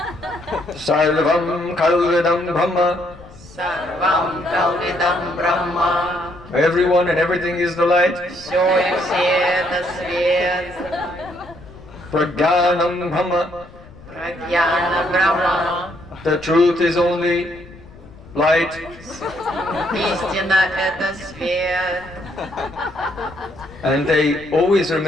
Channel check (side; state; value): left; noise; rumble, 21 dB below the sound